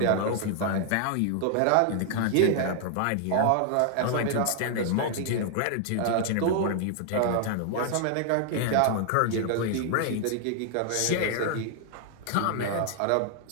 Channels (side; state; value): both; different; correlation 0.00